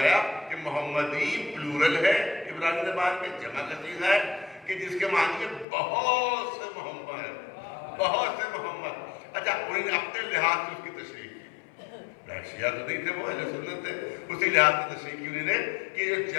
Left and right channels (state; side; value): drops out; right; at 5.7 s